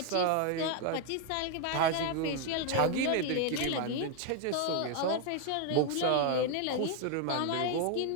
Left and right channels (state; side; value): different; both; correlation 0.01